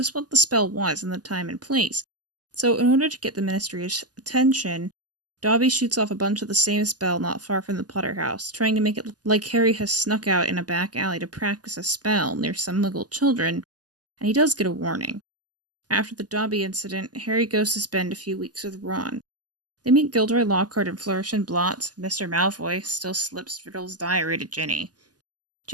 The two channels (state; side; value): late; left; 0.68 ms